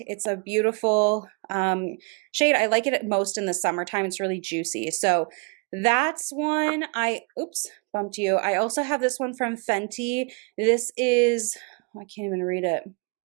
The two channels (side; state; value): left; quieter; 32.5 dB